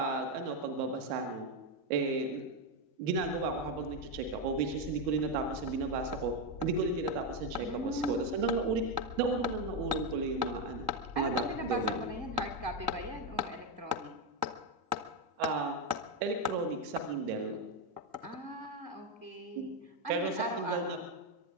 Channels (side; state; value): left; late; 1.9 ms